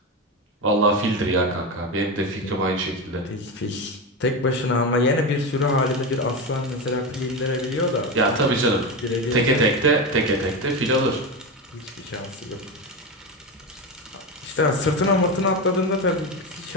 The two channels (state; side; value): normal; both; correlation 0.17